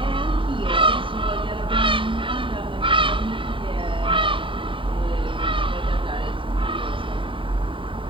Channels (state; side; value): late; left; 0.25 ms